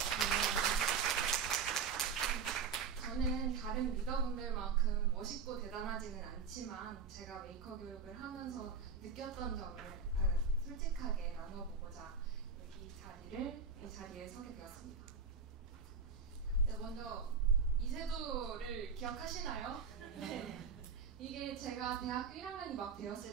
저는 다른 리더분들만큼 멋있고 대단하지는 않지만 제가 메이커 교육을 하면서 느꼈던 점을 솔직하게 나눠보고자 이 자리에 서게 되었습니다. 네, 먼저 이세도를 기억하시나요? 네. 이게 제가 대학교 1학년이 막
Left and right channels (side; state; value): left; quieter; 5.5 dB